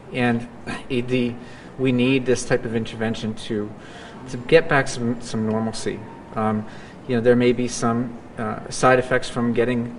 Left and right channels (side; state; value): both; identical; correlation 1.00